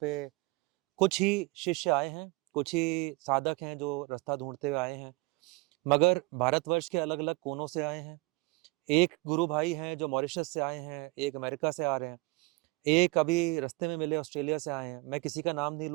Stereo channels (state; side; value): quieter; left; 23.9 dB